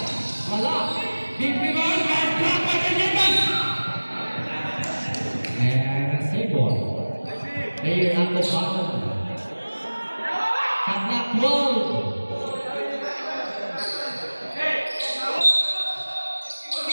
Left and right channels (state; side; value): inverted; both; correlation -1.00